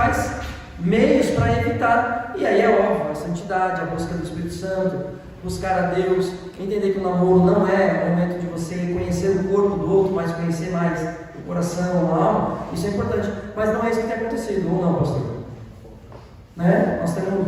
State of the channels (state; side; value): identical; both; correlation 1.00